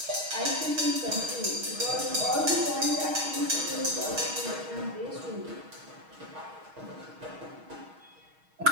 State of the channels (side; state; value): left; late; 6.3 ms